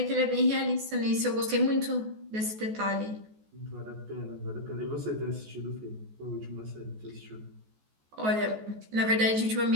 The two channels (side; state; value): left; late; 14 ms